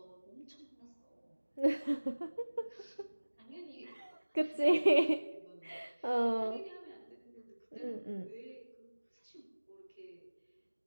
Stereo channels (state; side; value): inverted; both; correlation -1.00